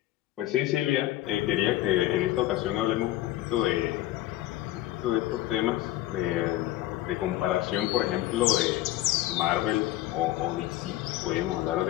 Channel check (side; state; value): right; quieter; 15.3 dB